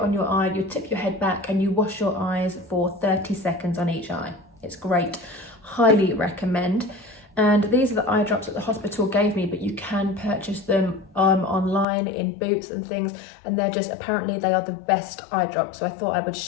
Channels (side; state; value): right; drops out; at 11.9 s